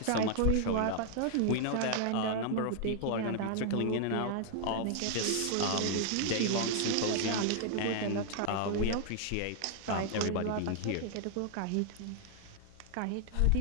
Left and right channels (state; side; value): different; both; correlation 0.00